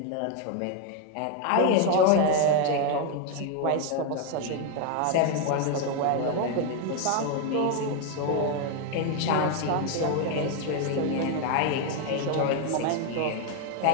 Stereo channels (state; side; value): different; both; correlation 0.01